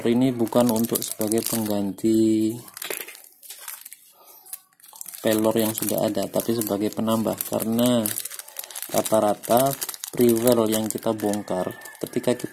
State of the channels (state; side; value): identical; both; correlation 1.00